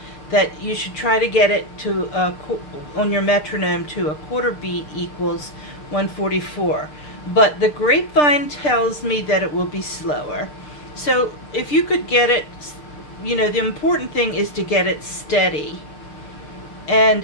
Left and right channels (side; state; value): right; late; 6.7 ms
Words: that you should try to get it to on your metronome to a quarter beat equals 144. But the grapevine tells me that it will be slower. So if you could get it, you know, the important thing is to get it steady.